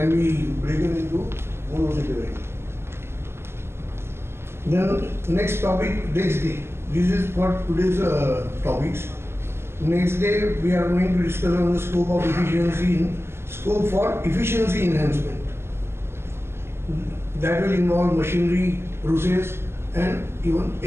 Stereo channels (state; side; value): late; left; 0.12 ms